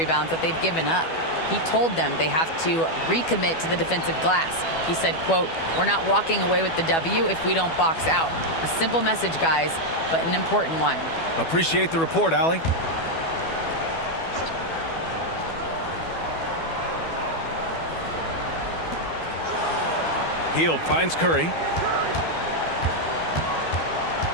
that they've given up. He told them they have to recommit to the defensive glass. He said, quote, "We're not walking away with the W if we don't box out." A simple message, guys, but an important one. Appreciate the report, Allie. Hield finds Curry.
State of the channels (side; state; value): right; late; 12 ms